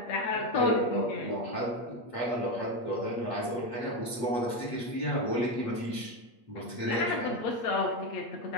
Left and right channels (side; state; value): right; late; 8.4 ms